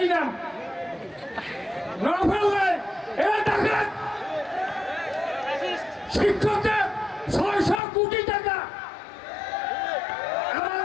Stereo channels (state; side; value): drops out; right; at 7.8 s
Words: নাম নভেল নাই। এরা ঢাকার শিক্ষকদের 600 কোটি টাকা,